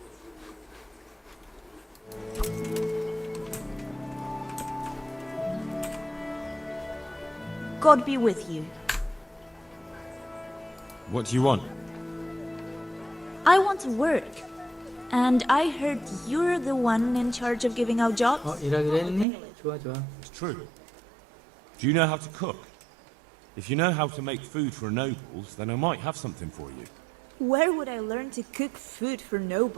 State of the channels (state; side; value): drops out; left; at 19.2 s